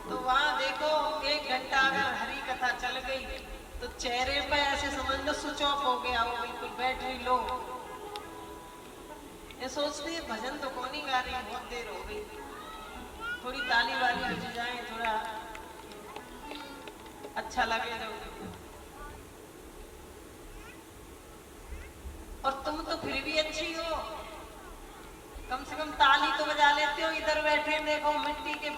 तो वहां देखो 1 घंटा अगर हरी कथा चल गई तो चेहरे पे ऐसे समझ लो स्विच ऑफ हो गया, वो बिल्कुल बैटरी लो। ये सोचते हैं भजन तो कौन ही गा रही, बहुत देर हो गई, थोड़ी ताली वाली बज जाए, थोड़ा अच्छा लगे। और तुम तो फिर भी अच्छी हो, कम से कम ताली तो बजा लेते हो। इधर बैठे देखो मिट्टी के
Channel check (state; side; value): identical; both; correlation 1.00